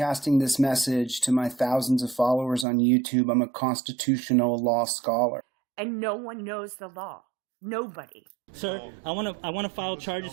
this message to my thousands of followers on YouTube. I'm a constitutional law scholar. And no one knows the law. Nobody. Sir, I want to file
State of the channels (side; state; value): left; drops out; at 2.7 s